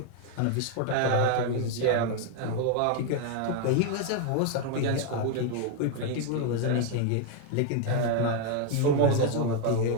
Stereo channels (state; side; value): different; both; correlation 0.01